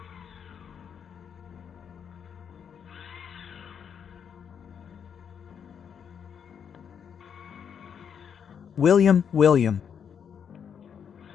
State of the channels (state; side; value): quieter; right; 7.6 dB